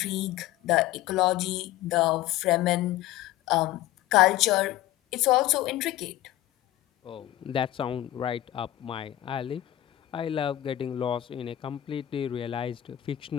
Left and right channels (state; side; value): quieter; right; 14.4 dB